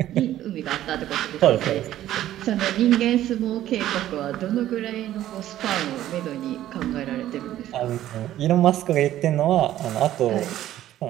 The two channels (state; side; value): quieter; left; 13.1 dB